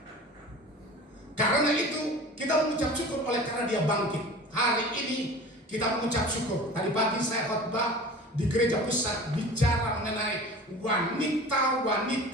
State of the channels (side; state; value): both; normal; correlation 0.39